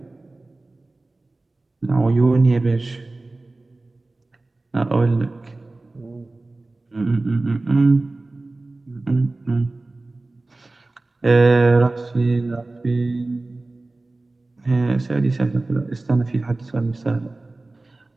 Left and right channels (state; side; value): quieter; left; 3.1 dB